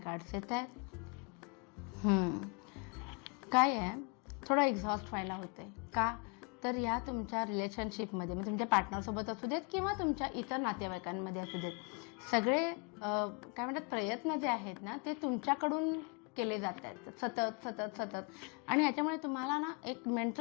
येत आहेत. काय आहे, थोडं एक्झॉस्ट व्हायला होते का तर या तुमच्या रिलेशनशिपमध्ये म्हणजे तुमच्या पार्टनरसोबत असू देत किंवा तुमच्या इतर नातेवाईकांमध्ये असू देत, सगळे काय म्हणतात प्रयत्न जे आहेत ना ते तुमच्याकडून केले जात आहेत सतत सतत सतत आणि ह्याच्यामुळे तुम्हाला ना एक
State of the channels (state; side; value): quieter; right; 33.5 dB